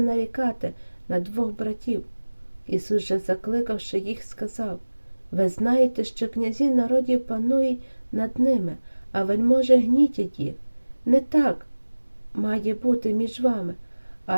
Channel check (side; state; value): both; inverted; correlation -1.00